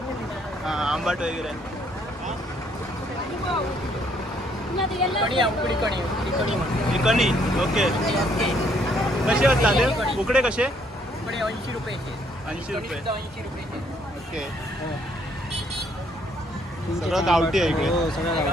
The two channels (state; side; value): normal; both; correlation 0.67